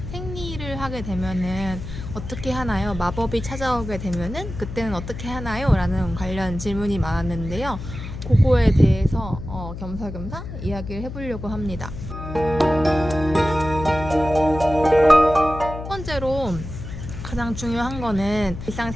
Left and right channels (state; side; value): noise; left; hum, 9 dB below the sound